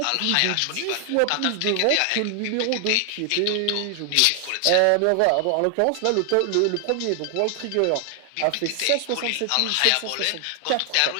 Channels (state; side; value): different; both; correlation 0.00